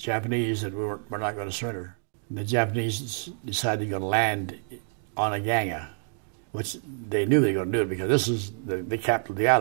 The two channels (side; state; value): left; silent; digital silence